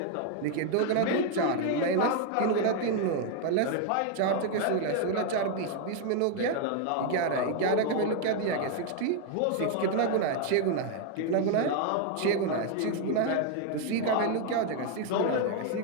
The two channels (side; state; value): both; different; correlation 0.00